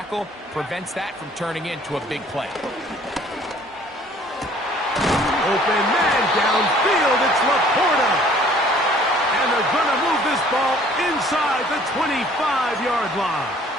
prevents that from turning into a big play. Open man downfield. It's Laporta. And they're going to move this ball inside the 25-yard line.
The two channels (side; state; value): both; normal; correlation 0.55